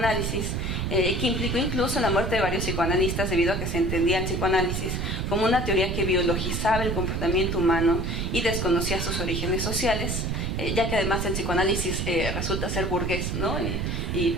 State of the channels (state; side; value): noise; right; rumble, 1 dB below the sound